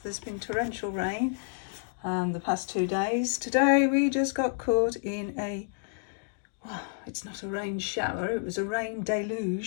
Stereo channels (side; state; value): right; silent; digital silence